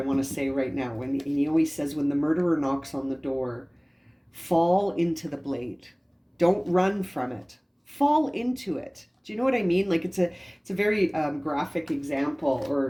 to say right now. And he always says, when the murderer knocks on the door, fall into the blade. Don't run from it. Fall into it. Do you know what I mean? Like it's a very graphic example,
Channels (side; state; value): both; identical; correlation 1.00